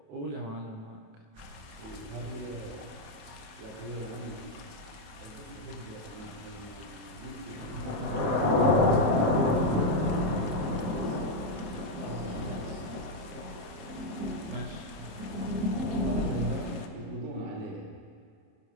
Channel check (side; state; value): left; late; 27 ms